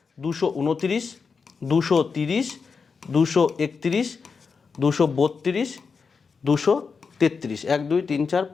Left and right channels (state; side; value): quieter; right; 5.2 dB